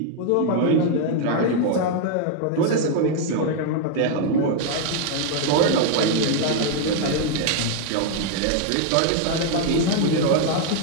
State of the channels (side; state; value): both; different; correlation 0.00